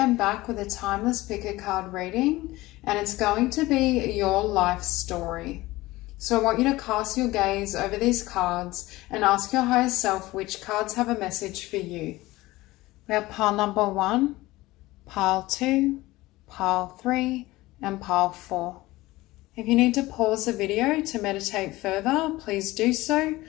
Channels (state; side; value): quieter; right; 19.0 dB